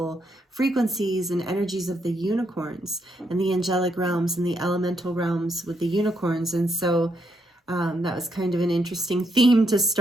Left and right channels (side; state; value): both; normal; correlation 0.77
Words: frequencies and energies of the unicorns and the angelic realms and the elemental realms with the unicorns. And so that was kind of an interesting theme to